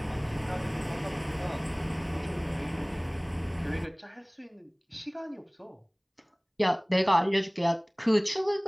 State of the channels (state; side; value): identical; both; correlation 1.00